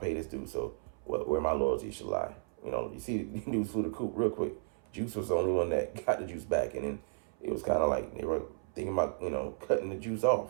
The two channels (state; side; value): silent; left; 55 dB below the other